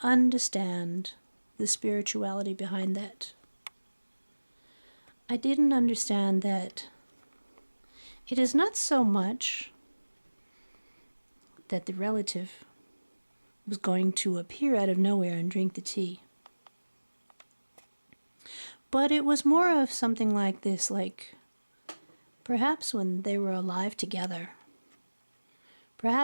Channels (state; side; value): inverted; both; correlation -1.00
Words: understand the spirituality behind that. I didn't understand that it is not so much that the relative was going to appear out of nowhere and drink the tea. But it was more of something like this, like perhaps when they were alive together,